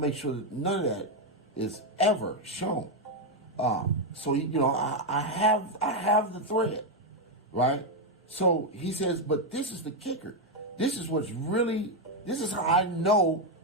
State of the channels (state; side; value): normal; both; correlation 0.03